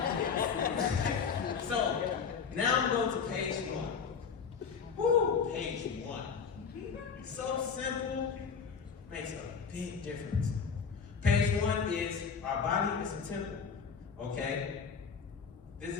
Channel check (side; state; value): right; quieter; 6.1 dB